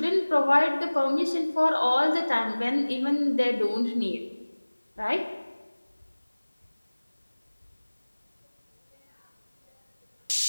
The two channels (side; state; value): both; inverted; correlation -1.00